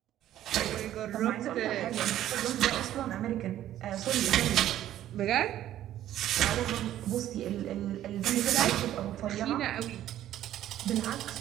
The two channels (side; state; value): left; quieter; 12.5 dB